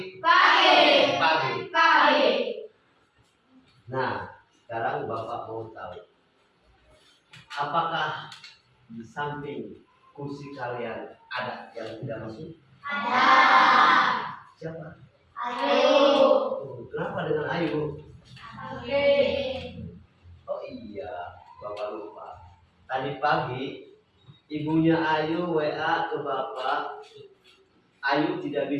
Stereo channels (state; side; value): identical; both; correlation 1.00